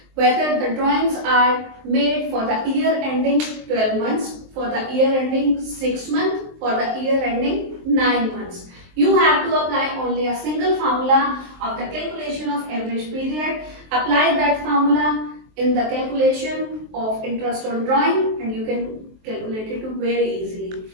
whether the drawings are made for the year ending 12 months, for the year ending 6 months, for the year ending 9 months. You have to apply only a single formula of the calculation of average period. Apply that formula in the calculation of interest on drawing and you can calculate it very easily.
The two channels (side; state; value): left; late; 23 ms